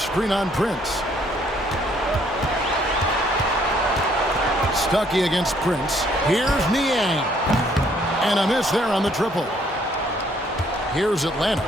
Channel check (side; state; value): both; normal; correlation 0.65